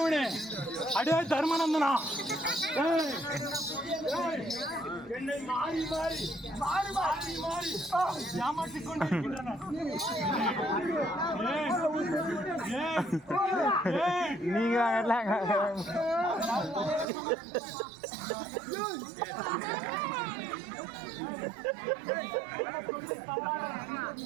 அடே தர்மநந்தனா, என்னை மாறி மாறி மாறி மாறி மாறி ஏமாற்றிக் கொண்டிருக்கின்றன. நீங்க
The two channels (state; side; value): drops out; left; at 17.1 s